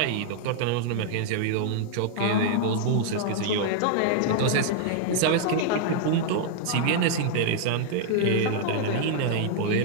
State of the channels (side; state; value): both; different; correlation -0.01